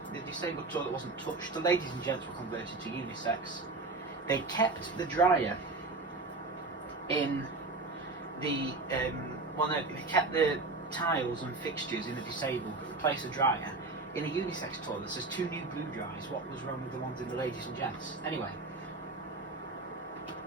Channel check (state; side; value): quieter; left; 3.5 dB